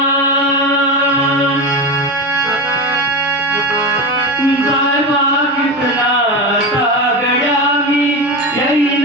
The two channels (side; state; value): both; normal; correlation 0.21